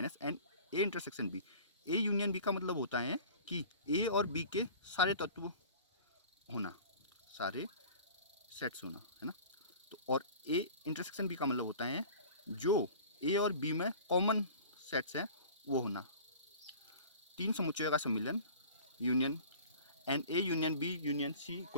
n A intersection B. A union B का मतलब होता है कि ए और बी के सारे तत्व होना, सारे सेट्स होना, है ना। तो और ए इंटरसेक्शन बी का मतलब होता है जो ए और बी में कॉमन सेट्स हैं वो होना। तीन समुच्चयों का सम्मिलन, union, n A union B union C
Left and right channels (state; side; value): inverted; both; correlation -0.43